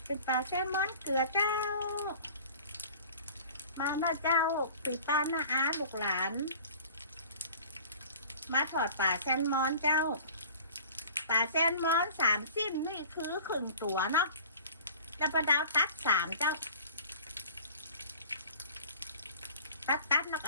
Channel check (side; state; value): both; inverted; correlation -0.46